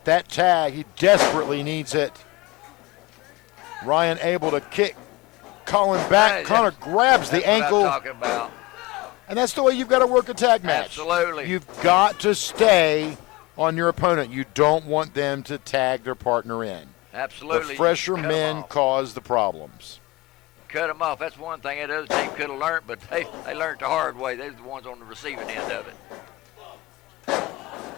that tag. He desperately needs it. Ryan able to kick Colin back. Hey, Connor grabs the ankle. What I'm talking about. And that's the way you've got to work a tag match. Absolutely. You've got to stay on your opponent. You don't want them to tag their partner in. Absolutely. The fresher men cause the problems. Cut them off. That's one thing that other team could have learned, but they learned the hard way. They're the ones on the receiving end of it.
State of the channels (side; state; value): right; quieter; 21.6 dB